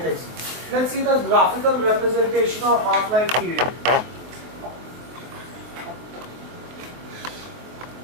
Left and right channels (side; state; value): left; late; 23 ms